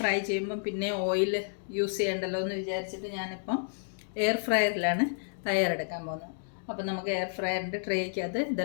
ചെയ്യുമ്പം പിന്നെ ഓയിൽ യൂസ് ചെയ്യണ്ടല്ലോ എന്ന് വിചാരിച്ചിട്ട് ഞാനിപ്പം എയർ ഫ്രയറിലാണ് തയ്യാറെടുക്കാൻ പോകുന്നത്. അപ്പോൾ നമുക്ക് എയർ ഫ്രയറിൻ്റെ ട്രേക്കകത്ത്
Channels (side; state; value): right; silent; digital silence